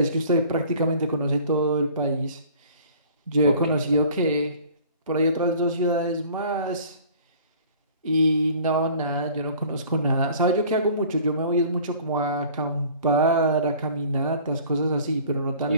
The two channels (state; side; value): inverted; both; correlation -0.49